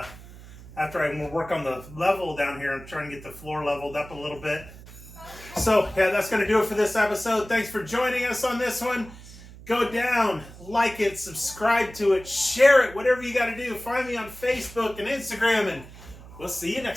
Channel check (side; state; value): right; noise; hum, 17 dB below the sound